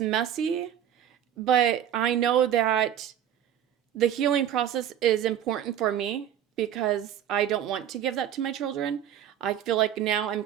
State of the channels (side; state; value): left; quieter; 10.1 dB